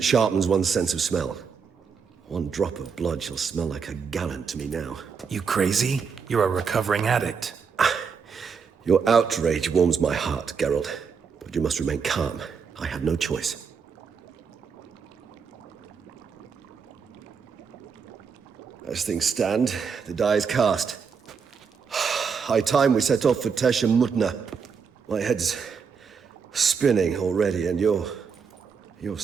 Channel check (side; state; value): left; quieter; 6.0 dB